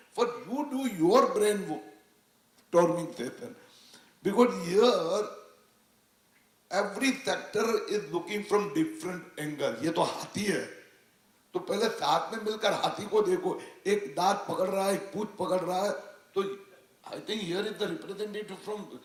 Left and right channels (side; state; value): both; identical; correlation 1.00